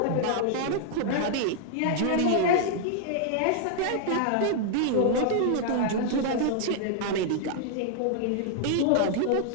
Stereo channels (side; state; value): both; different; correlation -0.01